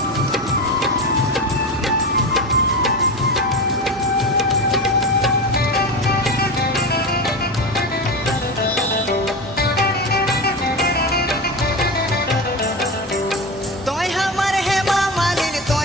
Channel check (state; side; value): normal; both; correlation 0.23